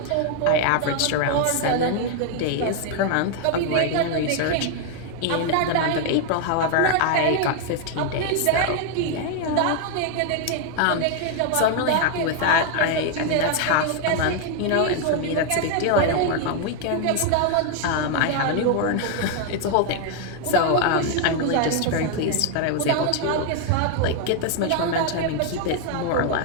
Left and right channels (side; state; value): both; different; correlation 0.00